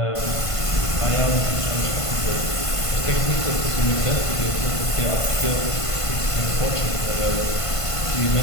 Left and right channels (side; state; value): right; late; 1.5 ms